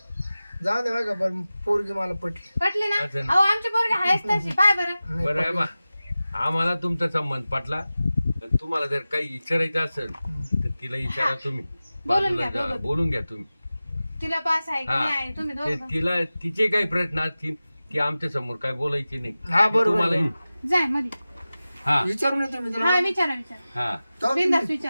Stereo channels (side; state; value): both; inverted; correlation -0.96